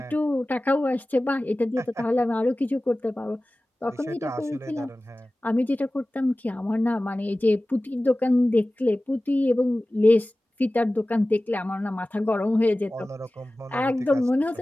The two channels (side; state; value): both; normal; correlation 0.97